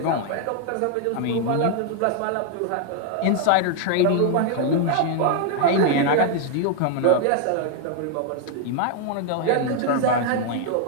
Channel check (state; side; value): different; both; correlation 0.00